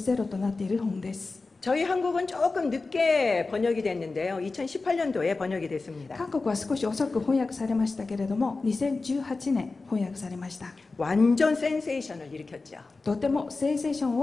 ラーとなっている本です。 저희 한국은 조금 늦게 번역이 됐는데요. 2018년도에 번역이 됐습니다. 韓国は少し遅く翻訳されましたけれども、2018年翻訳されました。 완전 센세이션을 일으켰죠. とてもセンセーション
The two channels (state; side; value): quieter; right; 3.7 dB